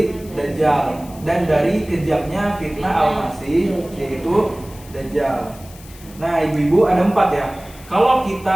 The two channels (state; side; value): noise; left; hiss, 21 dB below the sound